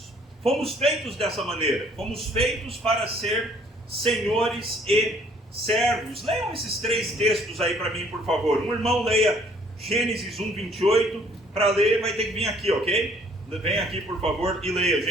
Fomos feitos dessa maneira. Fomos feitos para ser senhores e servos. Leiam esses três textos aí para mim, por favor. Um irmão leia Gênesis 1:28. Para ler vai ter que vir aqui, ok? Vem aqui, por favor, e leia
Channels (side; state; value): both; normal; correlation 0.60